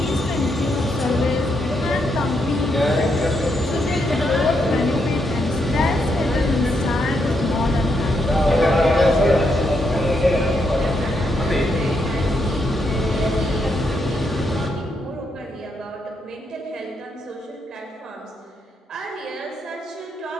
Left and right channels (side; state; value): both; normal; correlation 0.79